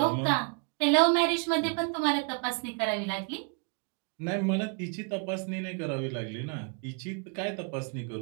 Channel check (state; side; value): quieter; left; 36.2 dB